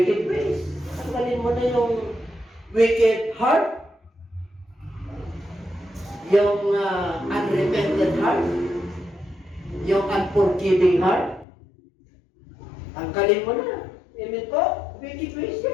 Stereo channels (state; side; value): drops out; right; at 11.5 s